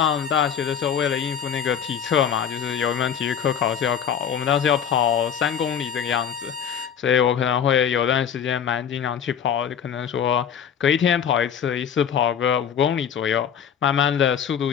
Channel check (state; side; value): quieter; right; 8.1 dB